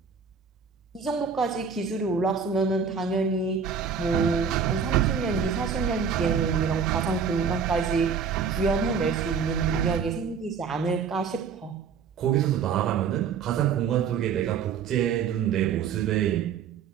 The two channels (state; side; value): quieter; left; 6.4 dB